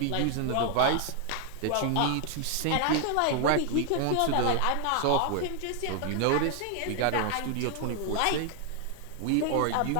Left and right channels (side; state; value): both; different; correlation 0.00